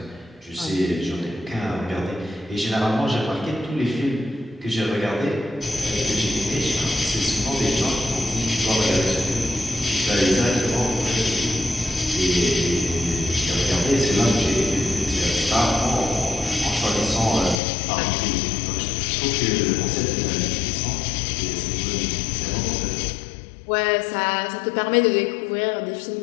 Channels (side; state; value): right; drops out; at 17.6 s